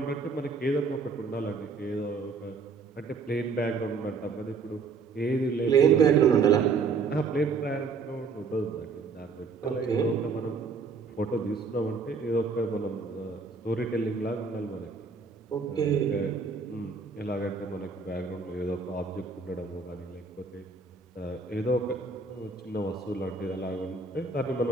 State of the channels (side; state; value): left; quieter; 4.7 dB